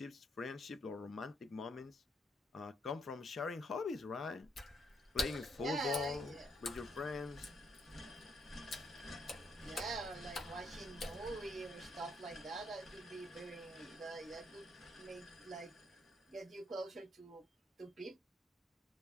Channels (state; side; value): normal; both; correlation 0.73